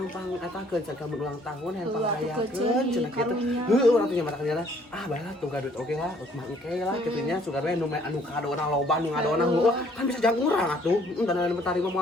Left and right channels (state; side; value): normal; both; correlation 0.61